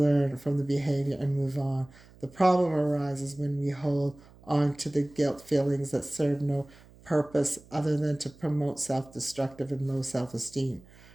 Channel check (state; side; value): noise; right; hum, 24 dB below the sound